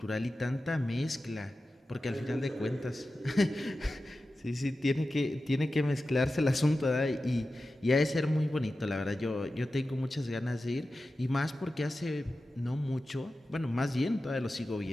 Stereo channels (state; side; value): normal; both; correlation 0.93